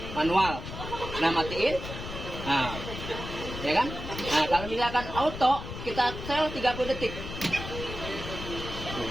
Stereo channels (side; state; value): left; noise; rumble, 8 dB below the sound